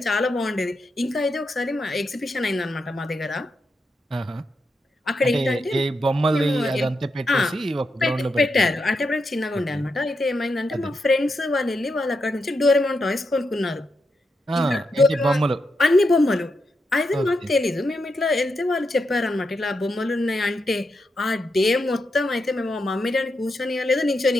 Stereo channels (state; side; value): normal; both; correlation 0.85